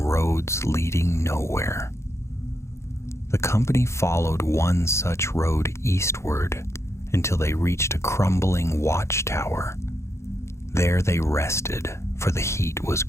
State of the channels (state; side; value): late; right; 0.13 ms